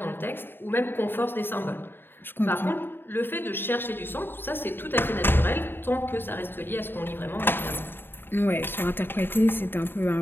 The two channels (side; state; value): right; late; 0.10 ms